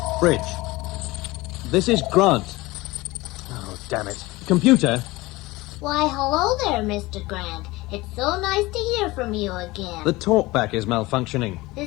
Bridge. This is Grant. Oh, damn it. Computer. Why, hello there, Mr. Grant. It's so nice to hear from you again. The talkback is malfunctioning.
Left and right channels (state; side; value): quieter; right; 20.7 dB